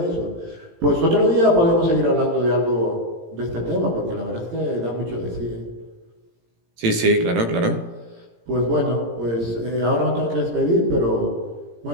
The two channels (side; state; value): left; late; 17 ms